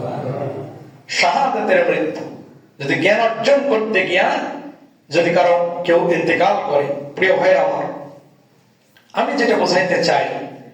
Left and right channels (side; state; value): both; identical; correlation 1.00